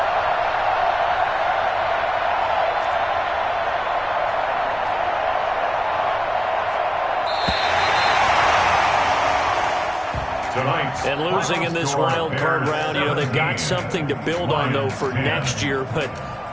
And losing in this wild card round, you know, they've got something to build on, though, for next year. But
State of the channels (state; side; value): identical; both; correlation 1.00